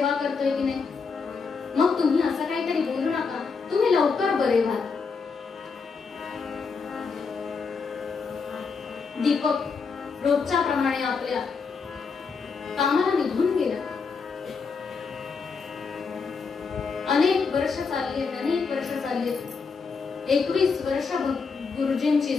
करतोय की नाही, मग तुम्ही असं काहीतरी बोलू नका. तुम्ही लवकर बरे व्हा. दीपक रोजच्या प्रमाणे आपल्या कामाला निघून गेला. अनेक वर्ष चालली. 21 वर्ष गुरुजींची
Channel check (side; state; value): right; quieter; 5.1 dB